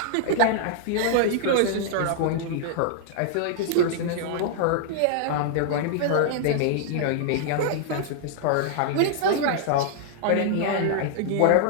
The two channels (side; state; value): both; different; correlation -0.01